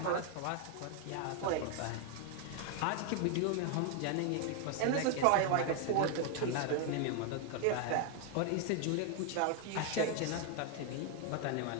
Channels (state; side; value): different; both; correlation 0.01